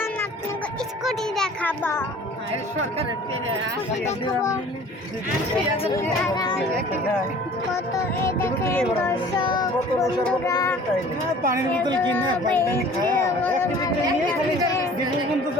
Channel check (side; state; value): both; normal; correlation 0.48